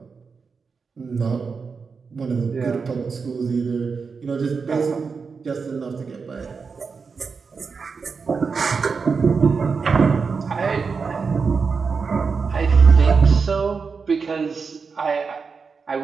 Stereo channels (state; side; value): quieter; left; 5.2 dB